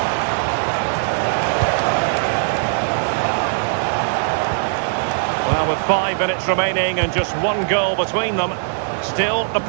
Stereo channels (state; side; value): silent; left; 57 dB below the other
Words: Well, with 5 minutes remaining and just one goal between them, still the